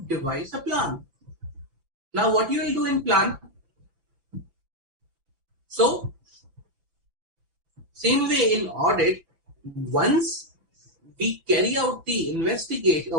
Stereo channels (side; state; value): left; late; 5.9 ms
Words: devise a plan. Now, what you will do in plan? So, same way in audit, once we carry out the investigation,